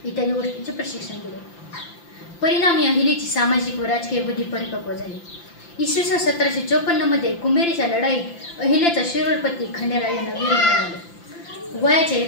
इत्यादी गोष्टींचे प्रशिक्षण दिले। परिणामी अहिलेची सामाजिक व राजकीय बुद्धी परिपक्व झाली। इसवी सन 1754 मध्ये कुंभेरीच्या लढाईत अहिल्याचा शिरोळपती खंडेराव यांना वीर मिळाले। वयाच्या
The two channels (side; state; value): right; late; 5.8 ms